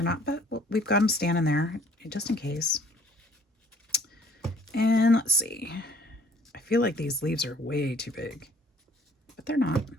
not, but we've got them standing there just in case. And let's see. I feel like these leaves are way too big, but they're not.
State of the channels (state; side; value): normal; both; correlation 0.58